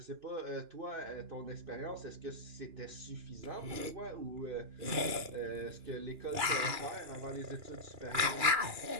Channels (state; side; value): late; left; 2.9 ms